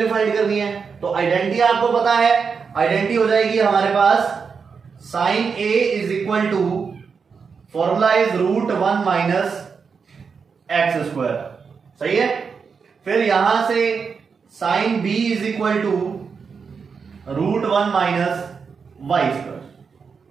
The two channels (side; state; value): left; quieter; 5.7 dB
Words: फाइंड करनी है। तो आइडेंटिटी आपको पता है, आइडेंटिटी हो जाएगी हमारे पास sin a is equal to, formula is √1 minus x square, सही है। फिर यहां से sin b is equal to √1 minus y square.